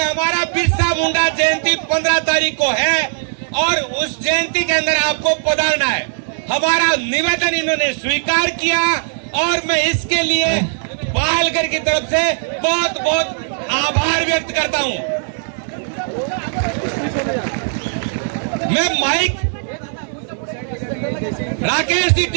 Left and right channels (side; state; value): left; silent; 67 dB below the other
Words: बिरसा मुंडा जयंती 15 तारीख को है और उस जयंती के अंदर आपको पधारना है। हमारा निवेदन इन्होंने स्वीकार किया और मैं इसके लिए पालघर की तरफ से बहुत बहुत आभार व्यक्त करता हूं। मैं माइक राकेश जी